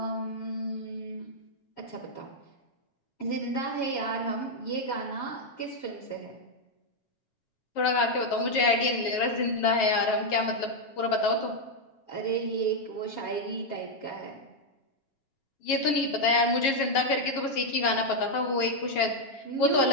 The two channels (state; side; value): late; right; 7.3 ms